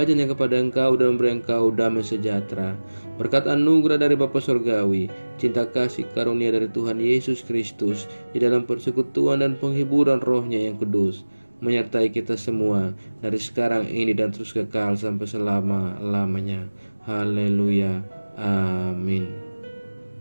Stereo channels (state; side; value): inverted; both; correlation -1.00